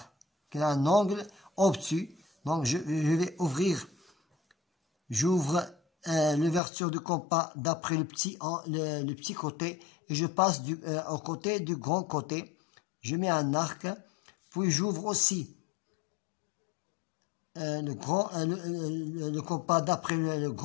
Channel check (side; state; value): right; drops out; at 6.6 s